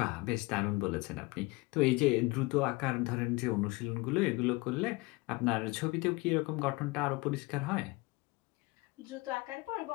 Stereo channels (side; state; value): right; quieter; 24.2 dB